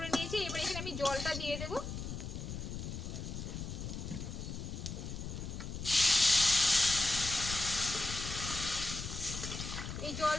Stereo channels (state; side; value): noise; left; rumble, 6 dB below the sound